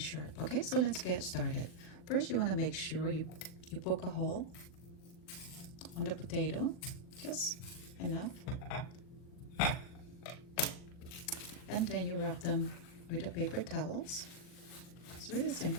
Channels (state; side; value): late; right; 40 ms